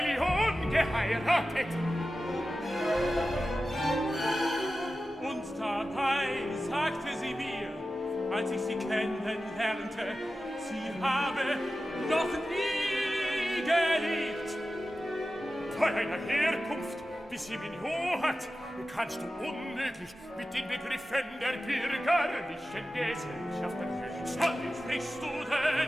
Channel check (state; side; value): normal; both; correlation 0.94